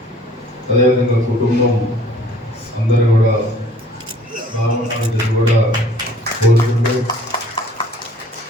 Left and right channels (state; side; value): normal; both; correlation 0.55